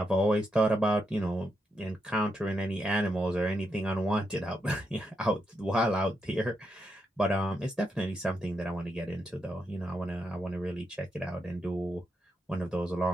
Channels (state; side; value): normal; both; correlation 0.82